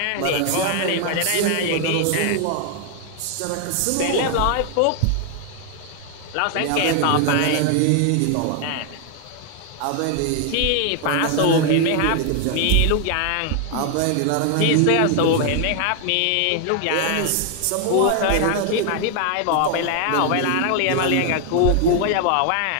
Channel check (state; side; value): different; both; correlation 0.00